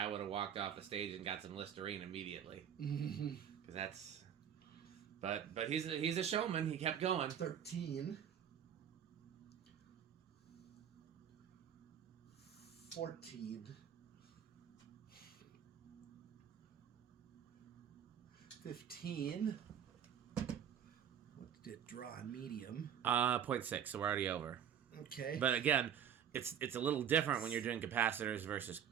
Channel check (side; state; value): left; quieter; 8.9 dB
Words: would have walked off the stage and got some Listerine immediately. Because that's. But he's a showman. He kept going. 13. 14. 15. What did it draw on medium? 0.6, so we're already over. Okay. But again, it's a little different when you're doing capacitors versus